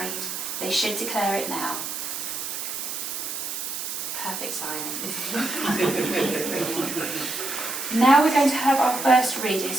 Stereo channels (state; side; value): noise; right; hiss, 5 dB below the sound